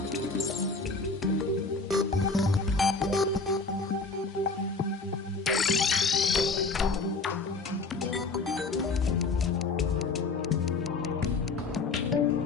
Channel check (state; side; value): quieter; right; 3.9 dB